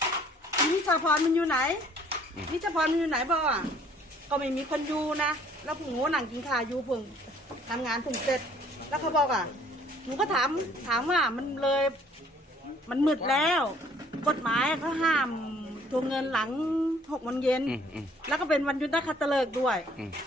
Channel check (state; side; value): normal; both; correlation 0.59